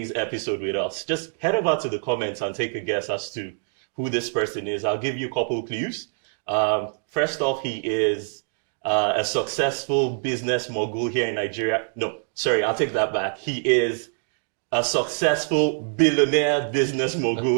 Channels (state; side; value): silent; left; digital silence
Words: episode with us. Just head over to the comments and take a guess as to who this person is. I'll give you a couple clues. First off, he is a successful business mogul here in Nigeria. No, sorry, I'll take that back. He is a successful billionaire business